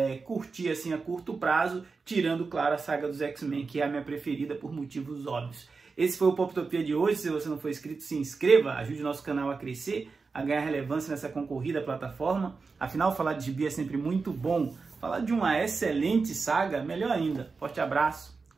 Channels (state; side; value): quieter; left; 4.5 dB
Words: curti assim, a curto prazo, tirando, claro, a saga dos X-Men, que é a minha preferida por motivos óbvios. Esse foi o Poptopia de hoje. Se você não for inscrito, se inscreva, ajude o nosso canal a crescer, a ganhar relevância nessa concorrida plataforma. Afinal, falar de gibi é sempre muito bom. Falar de uma excelente saga, melhor ainda. Forte abraço,